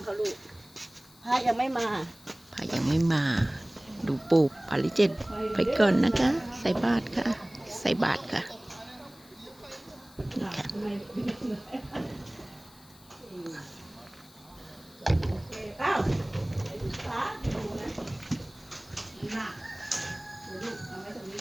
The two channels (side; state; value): left; noise; hiss, 25 dB below the sound